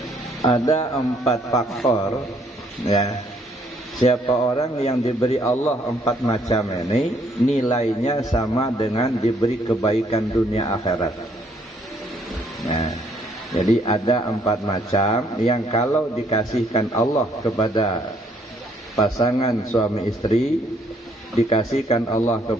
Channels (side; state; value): both; normal; correlation 0.67